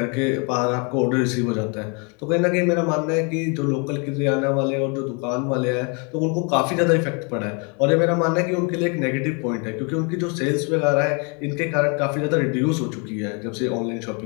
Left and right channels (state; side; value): quieter; right; 34.2 dB